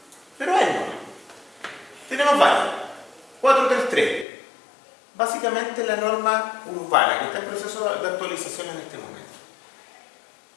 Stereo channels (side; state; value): right; drops out; at 4.2 s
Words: pero es bueno. Tenemos varios. 433. Básicamente la norma urbana, que está en proceso de actualización en este momento.